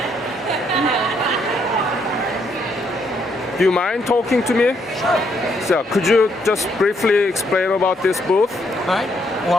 Do you mind talking to me? Sure. So, could you just briefly explain about this booth? All right.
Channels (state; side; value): normal; both; correlation 0.73